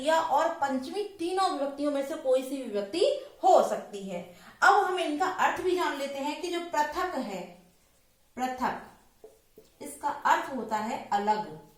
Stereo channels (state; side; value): identical; both; correlation 1.00